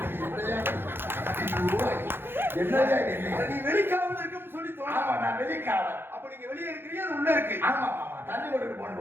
என்னையா இது? நீ வெளிக்காவல இருக்குன்னு சொல்லி ஆமா தோணும். நான் வெளிக்காவல். அப்ப நீங்க வெளியே இருக்கிறீங்க அது உள்ள இருக்கு. ஆமா ஆமா தண்ணி கொண்டுட்டு போன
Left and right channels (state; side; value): late; left; 0.10 ms